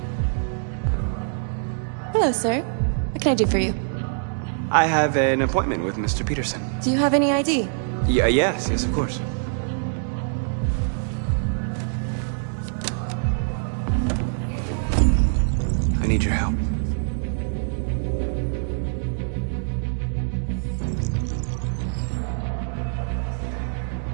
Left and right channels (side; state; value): left; silent; digital silence